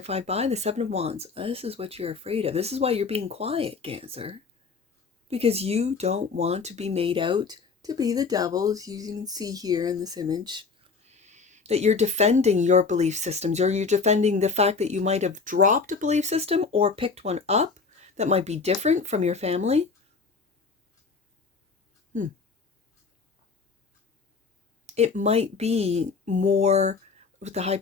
by the Seven of Wands. This is what you're afraid of. This is why you're being quiet, Cancer. Because you don't want to be made out to be the devil, as you can see here in this image. That you're defending your belief systems, or you're defending the fact that you might have dropped a belief system or picked one up that might be different from your family. It might be more, with the High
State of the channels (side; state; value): right; quieter; 4.8 dB